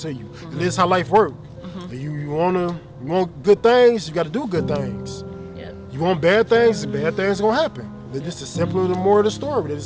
you. And this is how life works. You want good things, you got to do good things. Yep. You want bad things gonna happen. This is simply the more of the story.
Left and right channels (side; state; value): both; identical; correlation 1.00